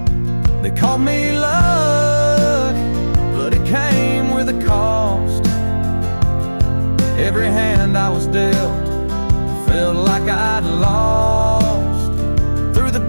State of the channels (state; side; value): inverted; both; correlation -1.00